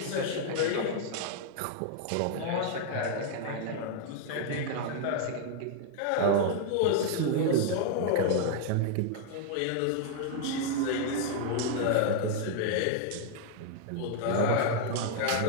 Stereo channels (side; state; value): both; different; correlation 0.00